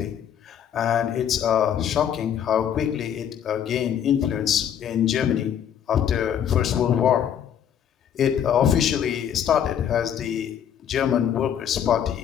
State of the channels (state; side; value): quieter; right; 9.1 dB